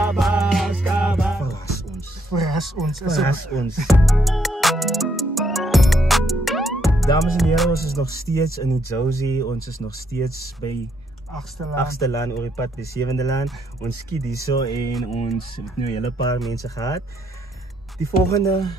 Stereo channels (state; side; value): normal; both; correlation 0.73